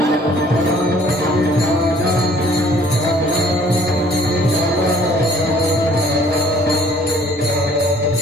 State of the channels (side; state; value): both; normal; correlation 0.57